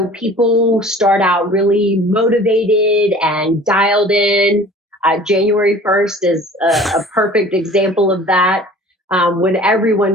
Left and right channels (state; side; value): normal; both; correlation 0.46